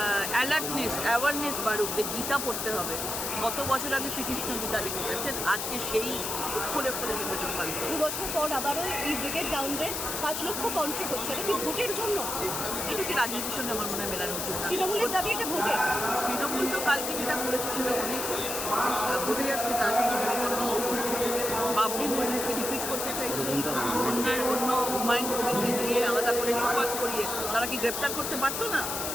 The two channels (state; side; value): noise; left; hiss, 3 dB below the sound